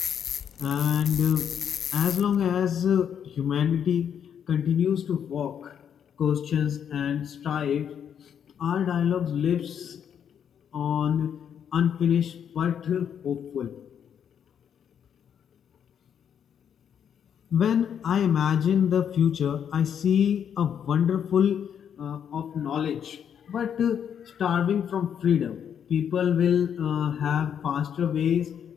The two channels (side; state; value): right; quieter; 8.4 dB